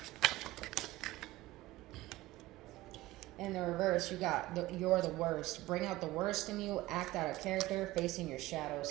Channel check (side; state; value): left; quieter; 17.7 dB